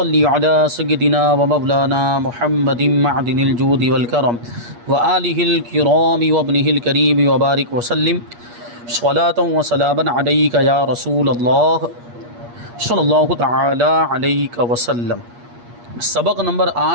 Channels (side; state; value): left; late; 8.4 ms